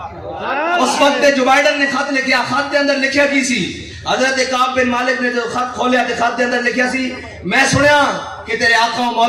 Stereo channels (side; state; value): both; identical; correlation 1.00